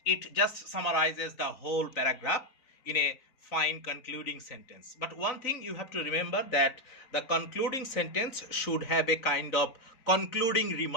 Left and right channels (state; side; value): late; right; 3.9 ms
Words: it just summarizes the whole paragraph in a fine concluding sentence. But one thing you have to remember, that the concluding sentence should have a kind of concluding